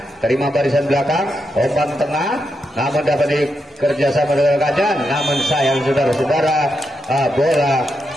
terima barisan belakang, umpan tengah, namun dapat dikerjasama dengan rekannya, namun sayang saudara-saudara, bola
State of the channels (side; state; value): both; normal; correlation 0.84